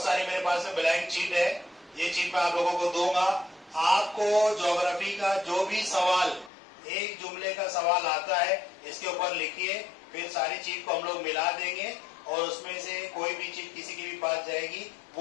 सारी मेरे पास में ब्लैंक चीट है। ये चीट मैं आप लोगों को दूंगा। आपको ज्योग्राफी का जो भी सवाल, एक जुमले का सवाल आता है, इसके ऊपर लिखिए। फिर सारी चीज को हम लोग मिला देंगे और उसमें से कोई भी चीज किसी की भी पास जाएगी,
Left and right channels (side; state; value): right; drops out; at 6.5 s